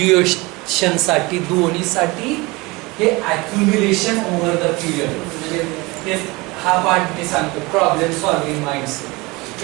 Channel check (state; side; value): quieter; left; 23.9 dB